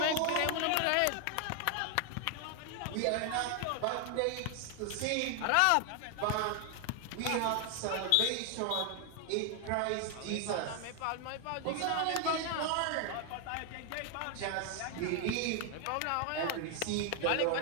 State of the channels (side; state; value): both; different; correlation 0.00